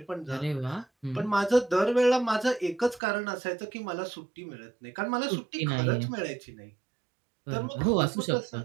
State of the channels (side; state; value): left; drops out; at 3.0 s